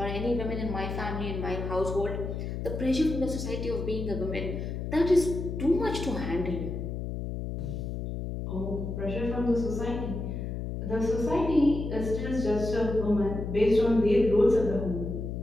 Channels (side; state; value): left; noise; hum, 4 dB below the sound